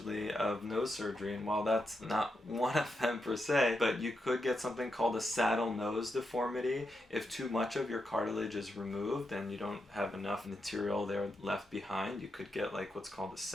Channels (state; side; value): normal; both; correlation 0.85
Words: of nose surgery, and while that's not one of them per se, but you could get something called a saddle nose deformity if too much of your cartilage is removed and you don't have enough material there left behind. You could get like what's called a